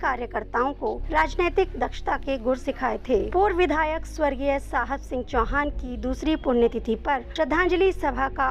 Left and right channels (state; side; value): identical; both; correlation 1.00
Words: को राजनीतिक दक्षता के गुर सिखाए थे। पूर्व विधायक स्वर्गीय साहब सिंह चौहान की दूसरी पुण्यतिथि पर श्रद्धांजलि सभा का